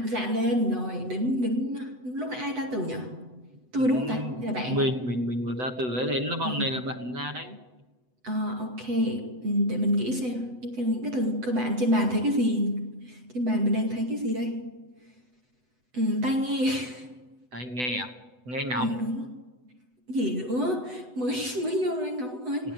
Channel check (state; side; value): late; left; 8.0 ms